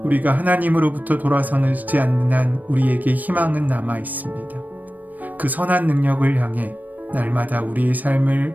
우리가 하나님으로부터 돌아서지 않는 한 우리에게 희망은 남아 있습니다. 그 선한 능력을 향해 날마다 우리의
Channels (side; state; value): left; late; 0.082 ms